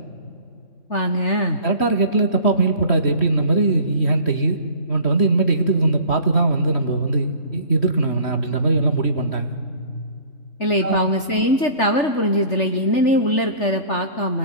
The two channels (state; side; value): late; right; 3.4 ms